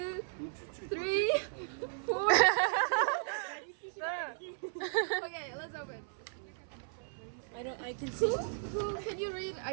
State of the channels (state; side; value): silent; left; 54 dB below the other